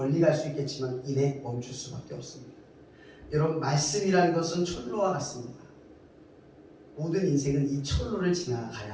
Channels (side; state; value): both; identical; correlation 1.00